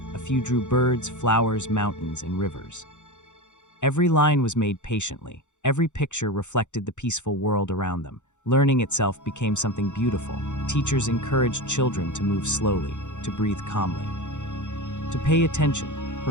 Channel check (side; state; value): right; late; 0.84 ms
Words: A few drew birds, flowers, mountains, and rivers. Every line was made patiently. Every picture reflected the peaceful world around them. Learning itself became something beautiful. Teachers encouraged children to move slowly, to breathe calmly, to pay attention.